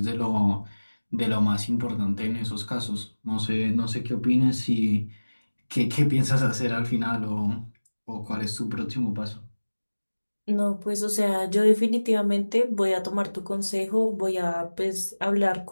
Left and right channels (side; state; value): both; inverted; correlation -1.00